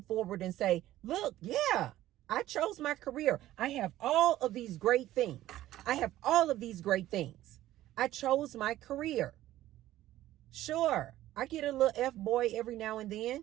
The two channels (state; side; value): quieter; left; 14.4 dB